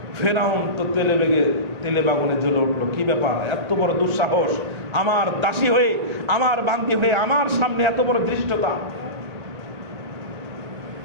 ফেরাউন তো তেলে বাগুনে জ্বলে উঠলো, কি ব্যাপার, এত বড় দুঃসাহস, আমার দাসী হয়ে, আমার বান্দি হয়ে আমার সামনে এত বড় ধৃষ্টতা।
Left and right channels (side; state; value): left; late; 1.8 ms